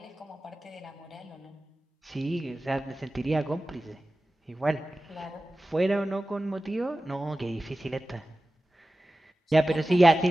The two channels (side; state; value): both; normal; correlation 0.95